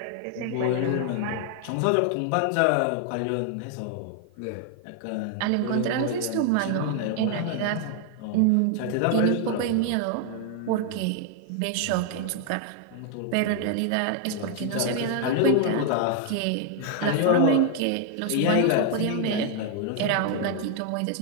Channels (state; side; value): different; both; correlation 0.00